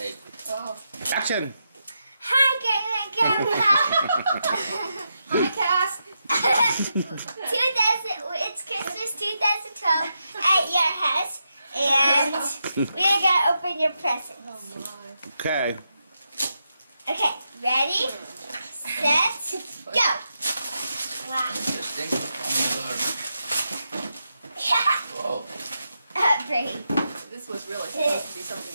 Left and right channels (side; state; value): both; inverted; correlation -0.85